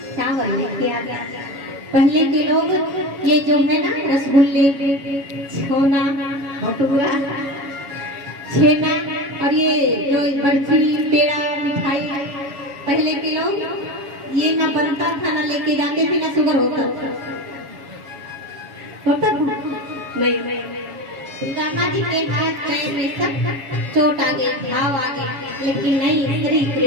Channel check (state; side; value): late; left; 7.1 ms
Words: चावल लेके आ गया। पहले के लोग ये जो है ना रसगुल्ले, छोना, भटूरा, छेना और ये जो बर्फी, पेड़ा, मिठाई, पहले के लोग ये ना बनता था, ना लेके जाते थे, ना शुगर होता नहीं। सुदामा जी के हाथ पैर में सब चोट आ गई, घाव आ गए, लेकिन नहीं, श्री